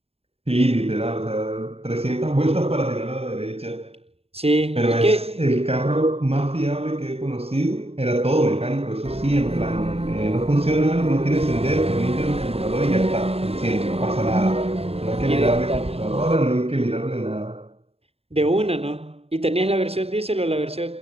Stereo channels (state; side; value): late; left; 0.29 ms